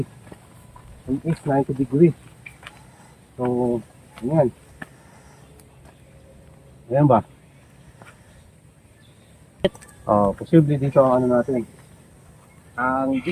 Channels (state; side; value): identical; both; correlation 1.00